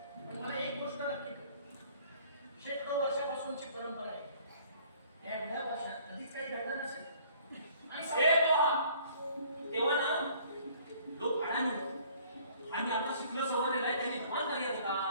पण मला एक गोष्ट नक्की कळली. शेकडो वर्षापासूनची परंपरा आहे. या एवढ्या वर्षात कधीच काही घडलं नसेल. आणि ए सगळं- तेव्हा ना लोक अडाणी आणि आता शिकलं सवरलेलं आहे त्यांनी धमान करायचं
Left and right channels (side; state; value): both; inverted; correlation -0.56